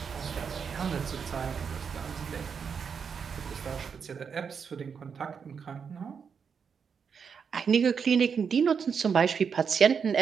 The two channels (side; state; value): left; quieter; 6.4 dB